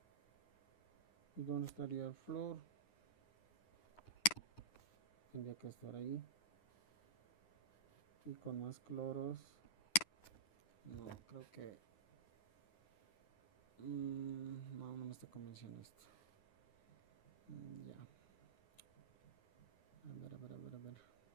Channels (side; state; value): right; late; 9.7 ms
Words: ¿Y dónde estaría el flúor? Tendría que estar ahí. Y con más cloros. No, creo que no me está convenciendo esto. Ya. A ver.